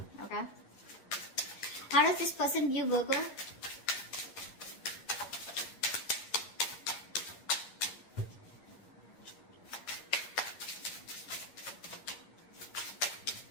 okay? How does this person view Virgo?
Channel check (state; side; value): late; right; 11 ms